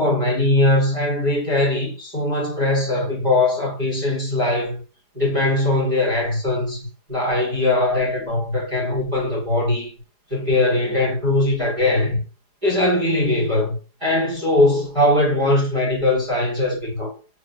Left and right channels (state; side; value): late; left; 4.9 ms